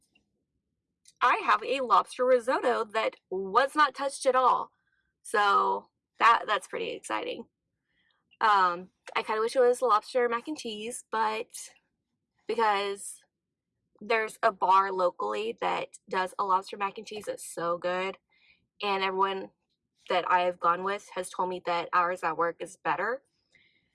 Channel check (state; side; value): identical; both; correlation 1.00